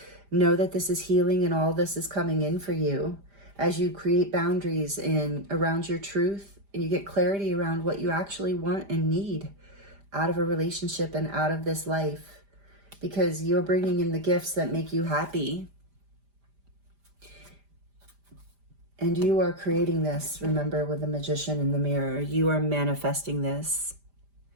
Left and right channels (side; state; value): left; late; 5.0 ms